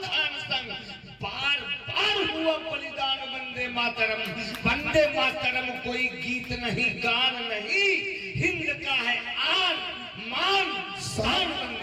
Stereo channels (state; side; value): identical; both; correlation 1.00